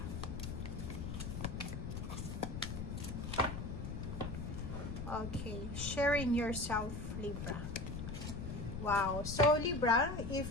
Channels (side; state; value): left; noise; rumble, 5 dB below the sound